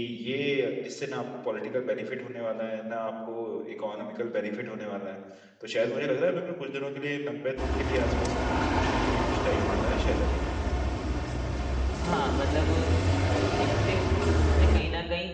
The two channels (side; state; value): both; identical; correlation 1.00